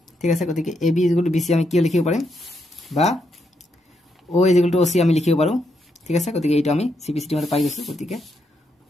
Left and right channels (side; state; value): both; normal; correlation 0.80